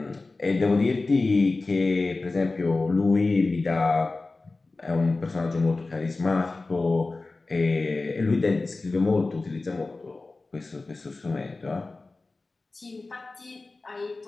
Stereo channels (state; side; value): quieter; right; 3.5 dB